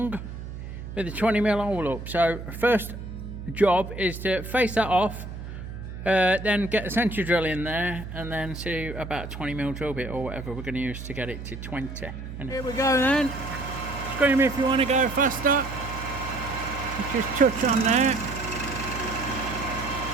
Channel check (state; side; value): noise; right; hum, 9 dB below the sound